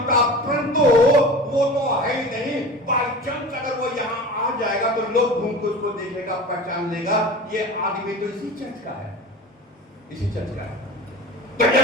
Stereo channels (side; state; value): both; normal; correlation 0.35